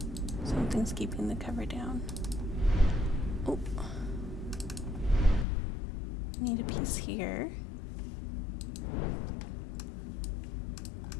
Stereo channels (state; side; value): drops out; right; at 5.5 s